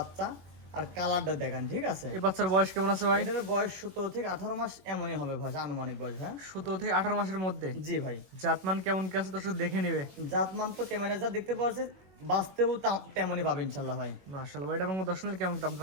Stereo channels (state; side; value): late; left; 21 ms